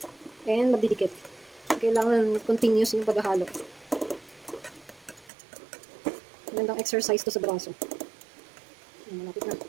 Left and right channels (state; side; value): drops out; left; at 5.3 s